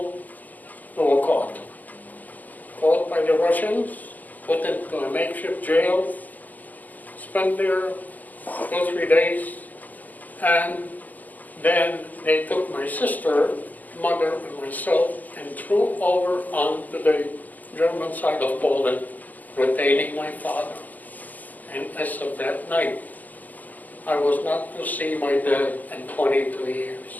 we were caught. Caught by the Russians, put into a makeshift jail, spent there 2 or 3 days, and then they took my sister, mother, and myself and threw over onto the German side of Poland, retaining my father. And as of that night, I was not to see my dad in 22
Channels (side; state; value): right; late; 0.082 ms